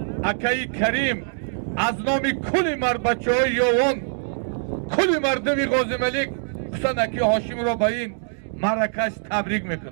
اکای کریم، از نام کل مرد بچه های یوان، کل مردمی غازی ملک، خصوصا اکای هاشم را به این مرکش تبریک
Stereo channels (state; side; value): silent; left; digital silence